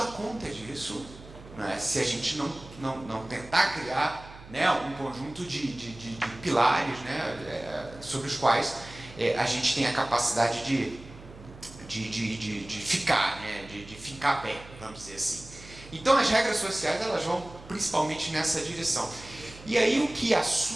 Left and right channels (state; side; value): noise; right; hum, 18 dB below the sound